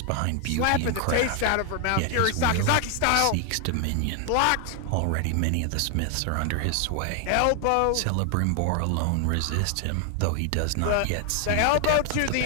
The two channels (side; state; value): both; different; correlation 0.00